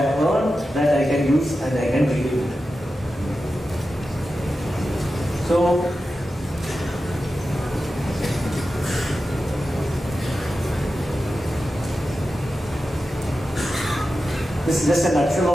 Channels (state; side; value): normal; both; correlation 0.92